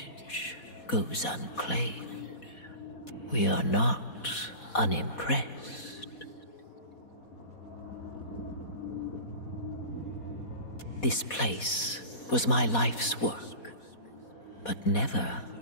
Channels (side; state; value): right; late; 4.2 ms